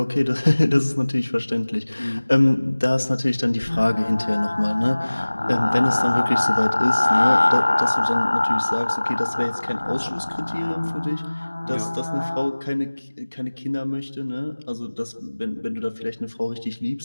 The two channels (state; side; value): inverted; both; correlation -1.00